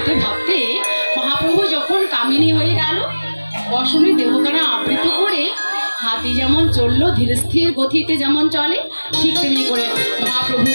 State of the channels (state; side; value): inverted; both; correlation -1.00